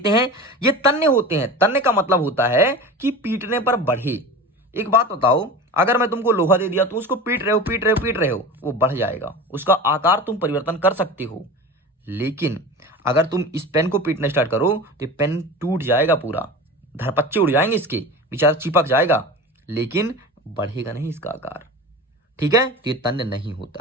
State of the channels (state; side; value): normal; both; correlation 0.32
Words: हैं, ये तन्ने होते हैं। तन्ने का मतलब होता है कि पीटने पर बढ़े। एक बात बताओ, अगर मैं तुमको लोहा दे दिया तो उसको पीट रहे हो पीट रहे हो पीट रहे हो, वो बढ़ जाएगा, उसका आकार तुम परिवर्तन कर सकते हो। लेकिन अगर तुम इस पेन को पीटना स्टार्ट करो तो पेन टूट जाएगा, पूरा धरपच्चे उड़ जाएंगे, इसके बेचारा चिपक जाएगा, लेकिन बढ़ेगा नहीं इसका आकार। ठीक है, तो ये तन्य नहीं